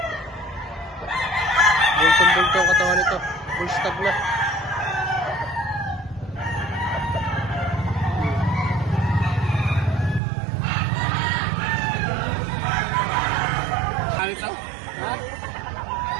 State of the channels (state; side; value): drops out; left; at 10.2 s